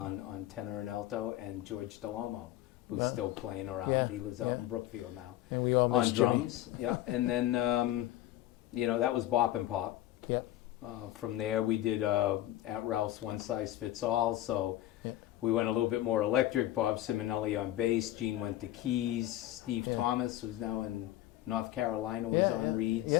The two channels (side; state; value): right; quieter; 14.5 dB